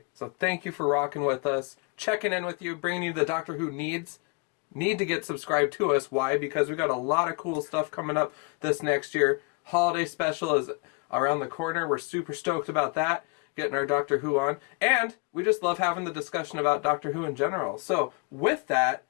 So thank you for rocking with us. Checking in with you, bringing you the Doctor Who need to get subscribed to us. Why? Because we got a lot of cool stuff coming up this next year. Holiday special is around the corner. We're super stoked about that. Getting our Doctor Who on. And we just love having the discussion about Doctor Who in general. So with that,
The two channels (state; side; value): quieter; right; 31.1 dB